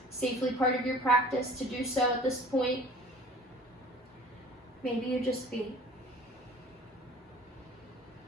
safely part of your practice to do so at this point. Maybe you just be.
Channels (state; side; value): normal; both; correlation 0.46